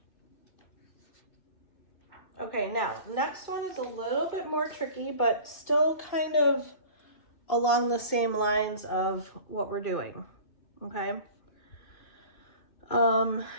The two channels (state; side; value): late; right; 2.5 ms